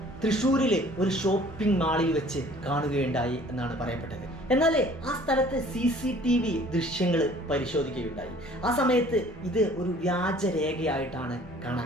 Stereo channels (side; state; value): both; normal; correlation 0.53